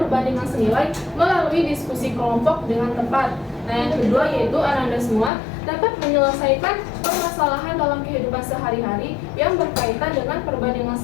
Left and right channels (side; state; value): right; drops out; at 5.3 s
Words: senilai melalui diskusi kelompok dengan tepat. Nah, yang kedua yaitu Anda semua dapat menyelesaikan permasalahan dalam kehidupan sehari-hari yang berkaitan dengan perbandingan